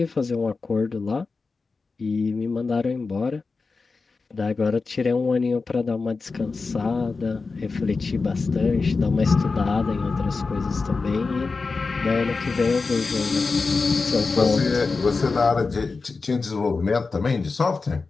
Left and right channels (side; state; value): right; quieter; 4.2 dB